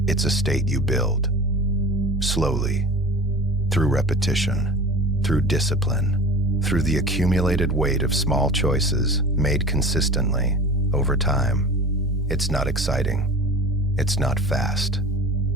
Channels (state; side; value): normal; both; correlation 0.36